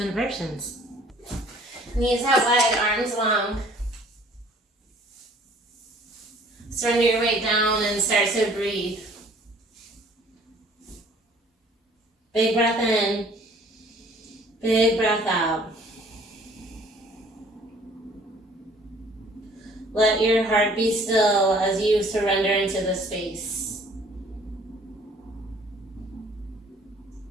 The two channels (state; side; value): normal; both; correlation 0.55